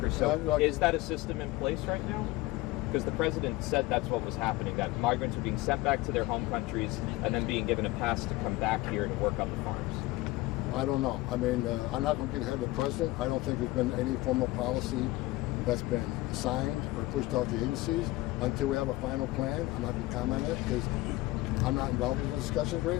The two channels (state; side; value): quieter; right; 19.5 dB